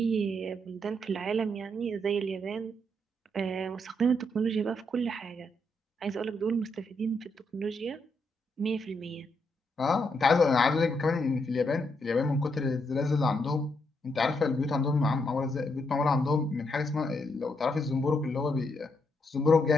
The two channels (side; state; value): both; normal; correlation 0.78